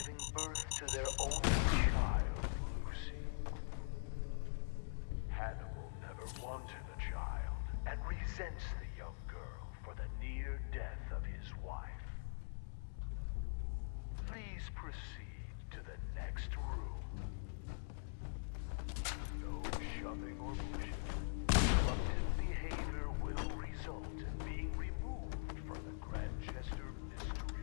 birth to their only child, Lucy. Hannibal never wanted a child and resents the young girl for the near death of his wife. Please proceed to the next room. No shoving or pushing. Disruptive behavior will result in being removed from the Grandchester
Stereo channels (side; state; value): right; silent; digital silence